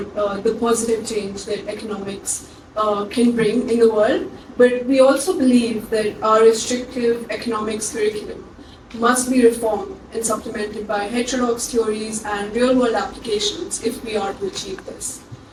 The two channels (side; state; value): both; identical; correlation 1.00